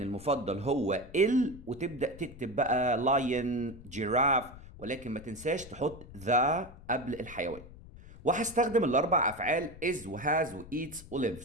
المفضل هو وتبدأ تكتب بقى lion جيراف، ولكن ما تنساش تحط the قبل الحيوان. وهستخدم الأربع أفعال is وhas وeats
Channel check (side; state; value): left; noise; rumble, 17 dB below the sound